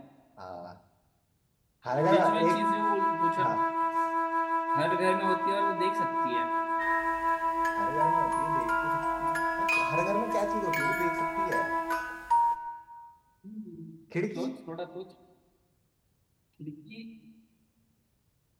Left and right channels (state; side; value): identical; both; correlation 1.00